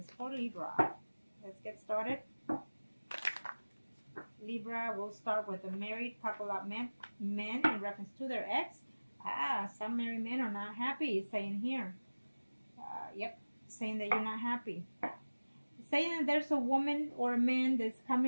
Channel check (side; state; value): both; inverted; correlation -1.00